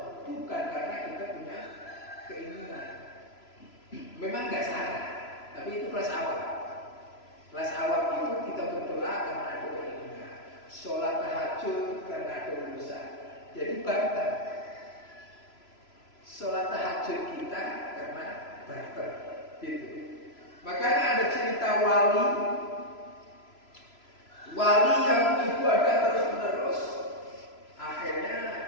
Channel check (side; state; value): right; late; 3.0 ms